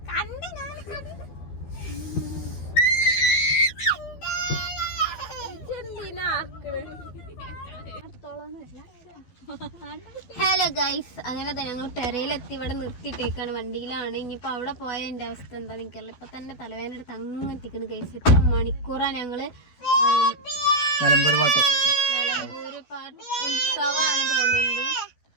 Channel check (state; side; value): late; right; 12 ms